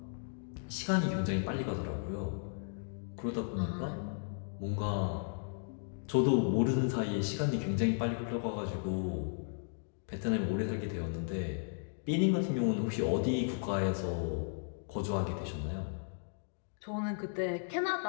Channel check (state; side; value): silent; right; digital silence